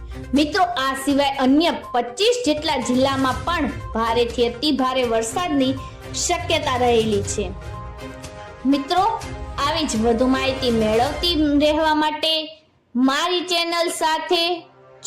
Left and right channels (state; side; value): identical; both; correlation 1.00